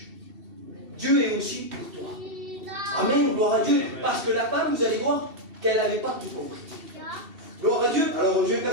Dieu est aussi pour toi. Amen, gloire à Dieu. Parce que la femme, vous allez voir qu'elle n'avait pas tout compris. Gloire à Dieu. Alors je vais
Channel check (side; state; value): left; late; 2.7 ms